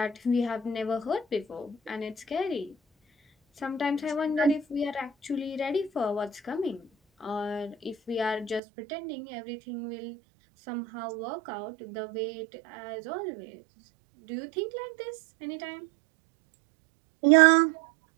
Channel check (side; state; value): left; drops out; at 8.6 s